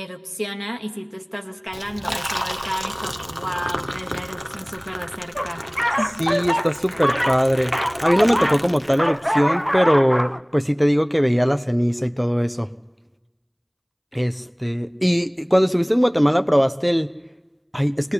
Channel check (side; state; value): both; identical; correlation 1.00